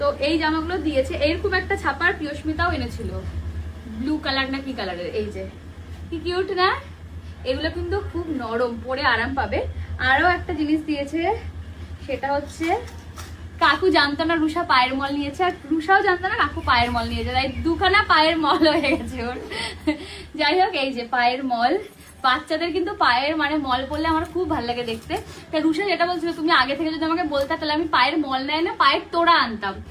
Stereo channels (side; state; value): both; identical; correlation 1.00